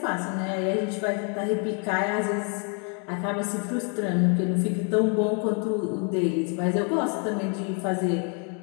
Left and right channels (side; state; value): right; quieter; 38.7 dB